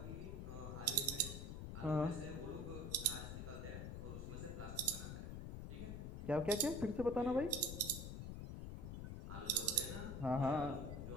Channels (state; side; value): noise; left; rumble, 6 dB below the sound